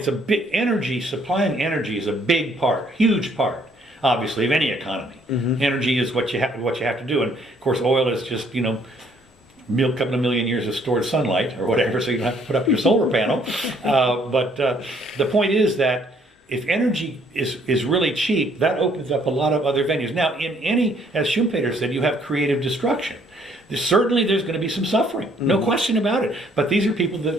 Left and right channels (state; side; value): normal; both; correlation 0.64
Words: a big energy, supplying energy is a big part, huge part, obviously, of any economy. Energy is what you have to do. And of course, oil is just, you know, a couple of million years of stored sunlight or whatever, so you don't have to put up your solar panel. But the point is that if energy is really cheap, that opens up a lot of other venues. Now, in any, as Schumpeter said, you have creative destruction. Certainly there's going to be some suffering, no question about it. But these are people that